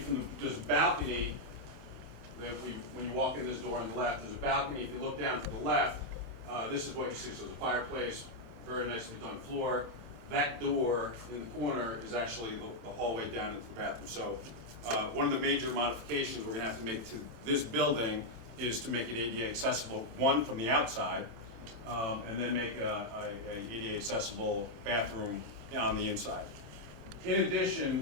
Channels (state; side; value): late; left; 26 ms